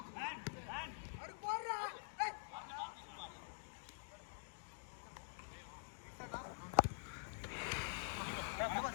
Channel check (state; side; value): silent; right; digital silence